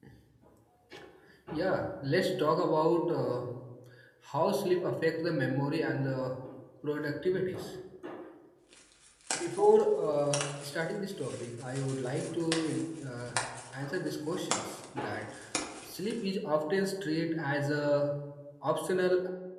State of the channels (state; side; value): identical; both; correlation 1.00